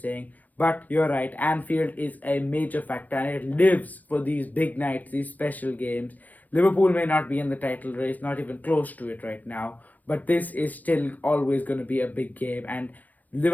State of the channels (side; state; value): right; late; 0.081 ms